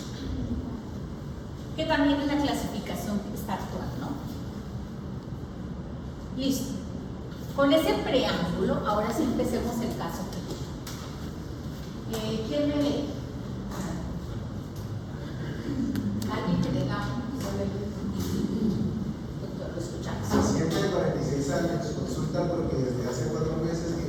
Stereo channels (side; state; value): both; identical; correlation 1.00